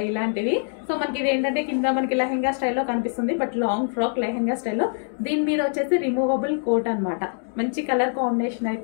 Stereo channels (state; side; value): silent; right; digital silence